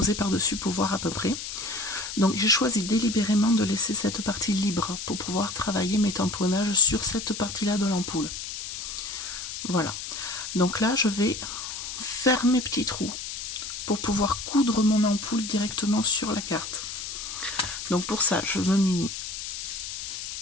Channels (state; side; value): noise; left; hiss, 7 dB below the sound